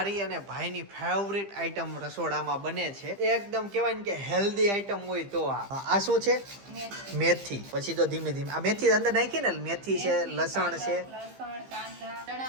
અને ભાઈની ફેવરિટ આઈટમ રસોડામાં બને છે. એકદમ કેવાય ને કે હેલ્ધી આઈટમ હોય તો આ શું છે? મેથી. પછી તો ધીમે ધીમે આ મેથી અંદર નાખી ને. મેથી છે, લસણ છે,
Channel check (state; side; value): late; left; 15 ms